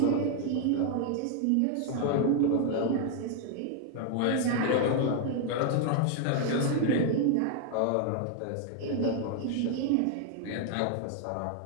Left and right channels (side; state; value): both; different; correlation 0.00